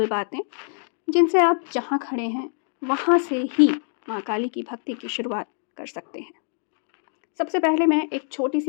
बातें, जिनसे आप जहाँ खड़े हैं, वहाँ से ही माँ काली की भक्ति की शुरुआत कर सकते हैं। सबसे पहले मैं एक छोटी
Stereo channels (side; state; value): right; silent; 59 dB below the other